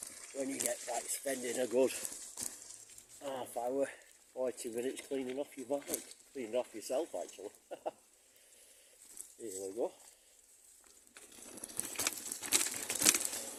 when you get like spending a good half hour, 40 minutes cleaning off your bike, cleaning off yourself actually. Here we go.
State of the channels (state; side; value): identical; both; correlation 1.00